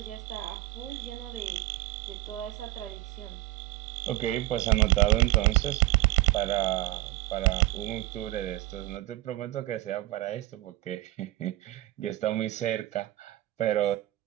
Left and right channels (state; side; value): quieter; left; 17.0 dB